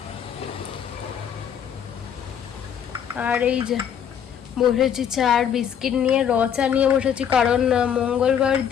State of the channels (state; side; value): quieter; right; 8.5 dB